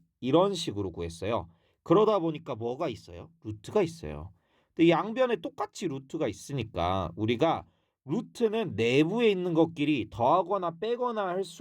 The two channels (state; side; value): identical; both; correlation 1.00